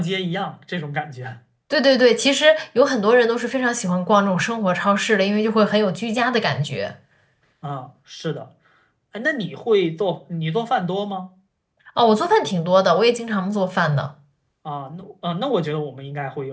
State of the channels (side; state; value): both; identical; correlation 1.00